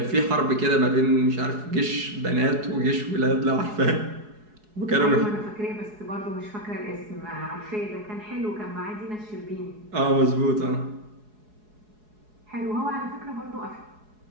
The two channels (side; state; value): left; late; 4.7 ms